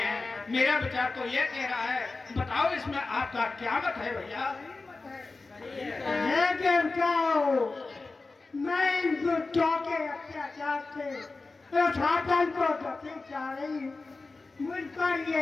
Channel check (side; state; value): right; quieter; 3.7 dB